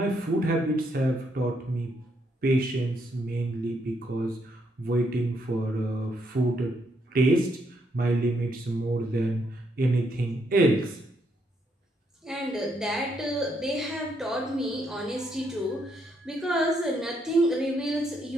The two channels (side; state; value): both; normal; correlation 0.75